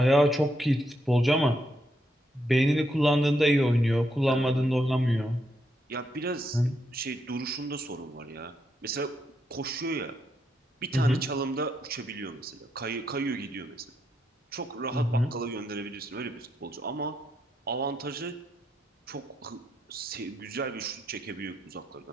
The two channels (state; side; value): normal; both; correlation 0.79